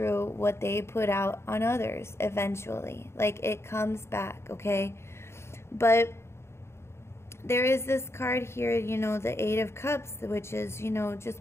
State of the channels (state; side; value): late; right; 0.13 ms